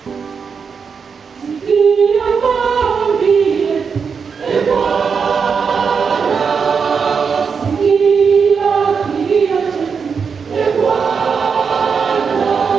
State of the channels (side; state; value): left; quieter; 5.9 dB